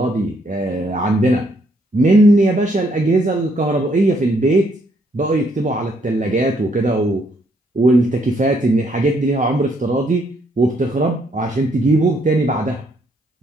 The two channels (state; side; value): normal; both; correlation 0.71